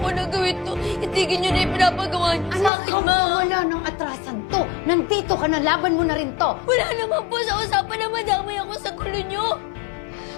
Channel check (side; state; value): right; drops out; at 2.7 s